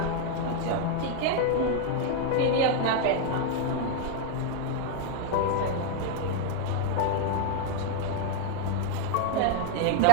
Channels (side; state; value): both; different; correlation 0.00